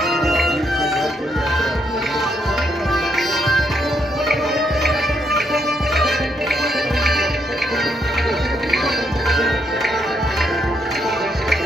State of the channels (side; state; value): both; normal; correlation 0.76